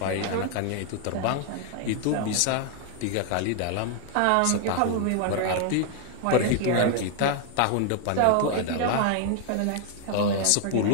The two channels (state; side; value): different; both; correlation 0.00